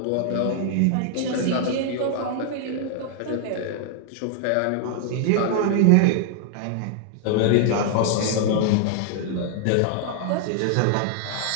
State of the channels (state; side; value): different; both; correlation 0.00